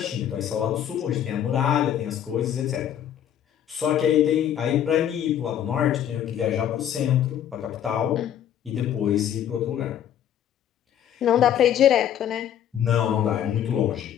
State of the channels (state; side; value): quieter; right; 10.2 dB